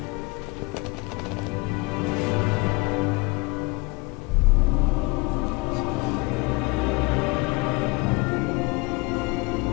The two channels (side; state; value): right; quieter; 26.3 dB